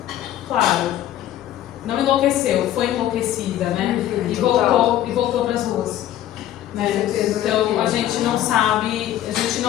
claro, não enlouqueceu, foi enlouquecida, né? E voltou para as ruas. Né? Então a gente não sabe, a gente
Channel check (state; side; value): quieter; right; 12.4 dB